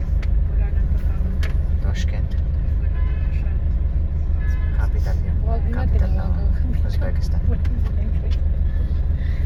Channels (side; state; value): both; identical; correlation 1.00